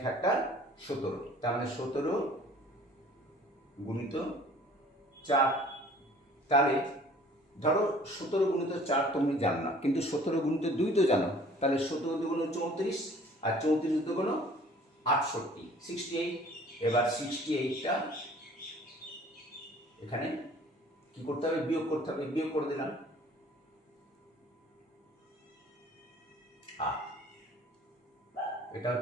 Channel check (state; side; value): normal; both; correlation 0.51